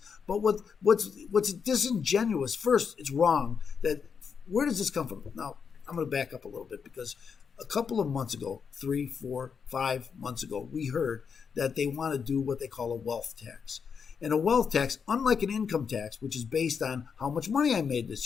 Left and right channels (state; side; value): quieter; right; 6.3 dB